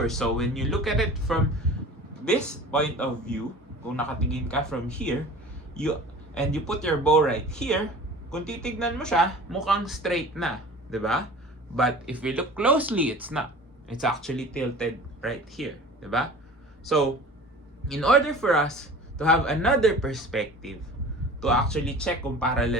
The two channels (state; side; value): normal; both; correlation 0.41